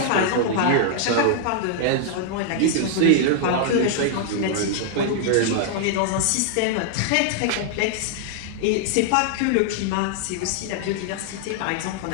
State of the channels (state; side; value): different; both; correlation -0.01